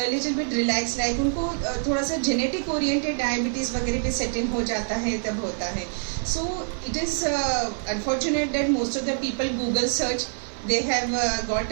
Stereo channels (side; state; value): left; silent; digital silence